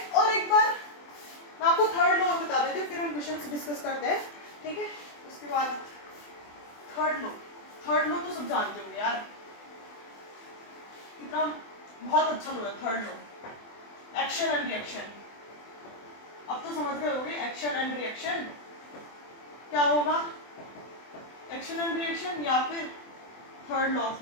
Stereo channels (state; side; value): late; right; 24 ms